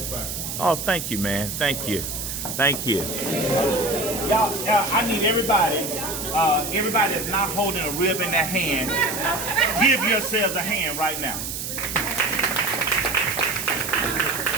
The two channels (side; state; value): right; noise; hiss, 5 dB below the sound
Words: back. Oh, thank you, man. Thank you. Thank you. Y'all, I need everybody that's not holding a rib in their hand, give yourselves a hand right now.